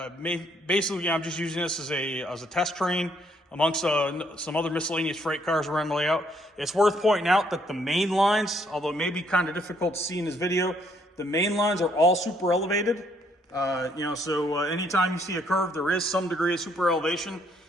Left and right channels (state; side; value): normal; both; correlation 0.69